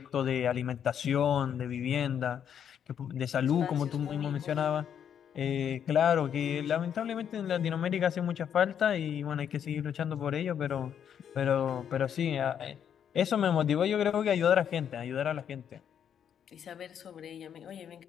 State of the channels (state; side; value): quieter; right; 8.6 dB